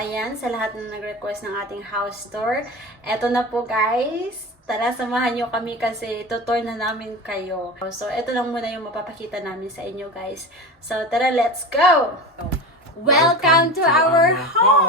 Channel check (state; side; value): normal; both; correlation 0.29